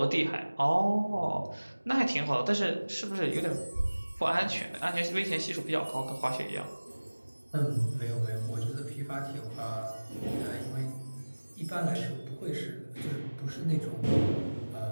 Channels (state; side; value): inverted; both; correlation -1.00